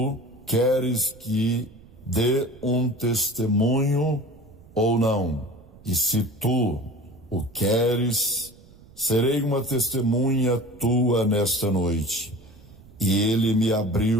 queres que dê um testemunho ou não. E se tu o queres, serei uma testemunha tua nesta noite. E ele me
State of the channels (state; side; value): noise; right; rumble, 24 dB below the sound